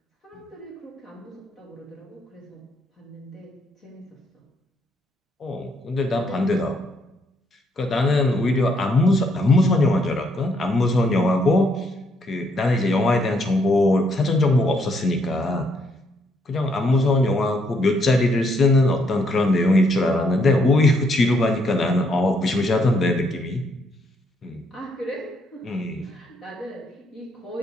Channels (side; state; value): both; normal; correlation 0.72